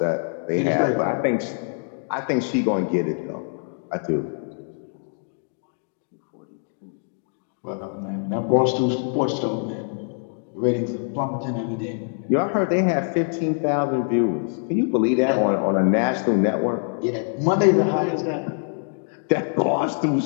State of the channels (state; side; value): silent; right; 63 dB below the other